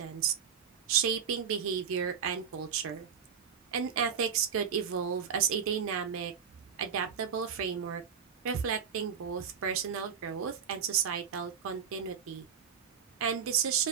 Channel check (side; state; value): left; quieter; 7.4 dB